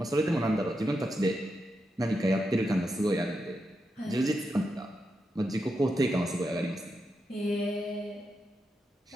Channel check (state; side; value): normal; both; correlation 0.86